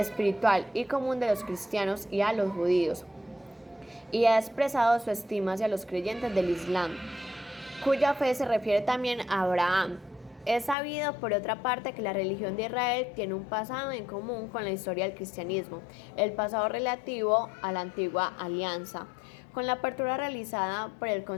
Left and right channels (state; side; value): drops out; right; at 10.8 s